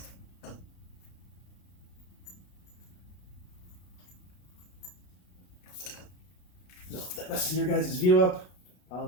No, that messes your guys' view up.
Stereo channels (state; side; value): late; right; 33 ms